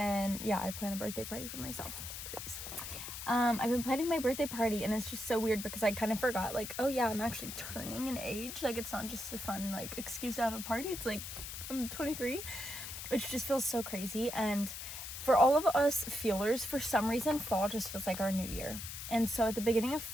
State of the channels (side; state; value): left; noise; hiss, 8 dB below the sound